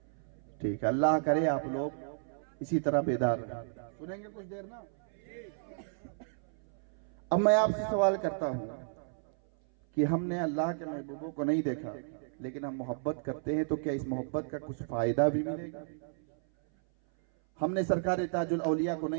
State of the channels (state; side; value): silent; left; 56 dB below the other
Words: ٹھیک ہے، اللہ کرے آپ لوگ اسی طرح بیدار رہیں. سنیں گے کچھ دیر نا؟ اب میں آپ سے سوال کرتا ہوں کہ ہم نے اللہ کے محبوبوں کو نہیں دیکھا لیکن ہم محبت کرتے ہیں تو کیا اس محبت کا کچھ فائدہ بھی ملے گا؟ ہم نے سرکار تاج الاولیاء کو